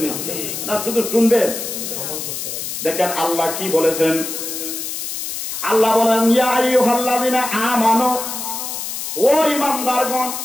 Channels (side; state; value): left; noise; hiss, 5 dB below the sound